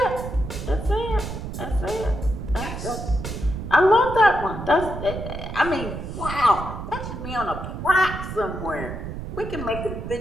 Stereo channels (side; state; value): right; noise; rumble, 7 dB below the sound